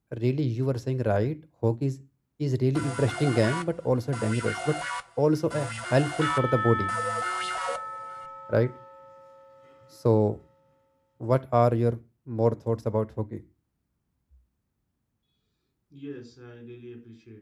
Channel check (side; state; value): both; identical; correlation 1.00